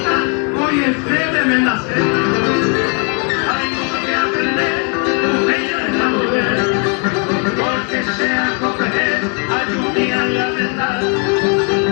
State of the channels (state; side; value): quieter; right; 35.5 dB